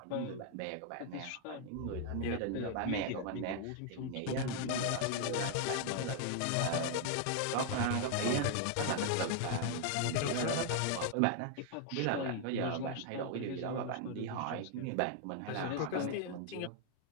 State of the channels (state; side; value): different; both; correlation 0.00